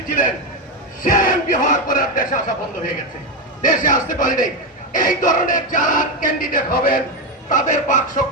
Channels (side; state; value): both; normal; correlation 0.09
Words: ছিলেন, সে এমপি হওয়ার পরে দেশে আসা বন্ধ হয়ে গেছে, দেশে আসতে পারেনি। এই ধরনের যারা ক্যান্ডিডেট হবেন, তাদের বাক্স